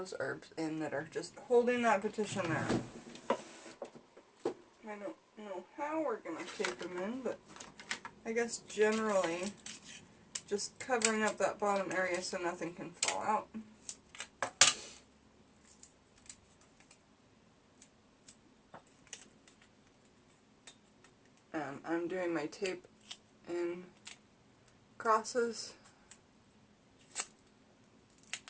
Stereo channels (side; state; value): both; identical; correlation 1.00